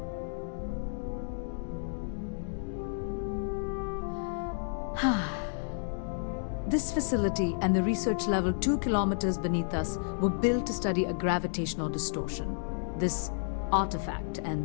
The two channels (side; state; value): right; silent; digital silence